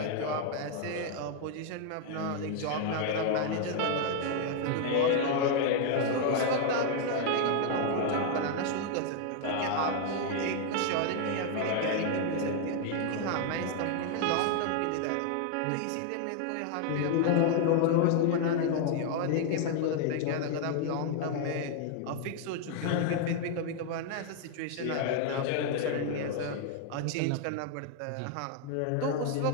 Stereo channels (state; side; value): different; both; correlation 0.00